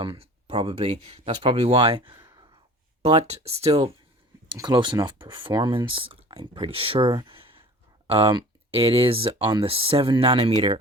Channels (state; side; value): normal; both; correlation 0.43